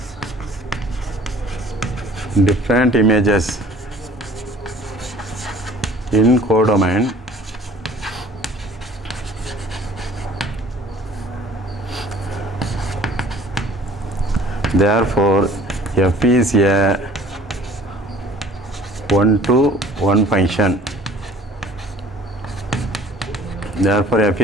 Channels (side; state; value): both; normal; correlation 0.51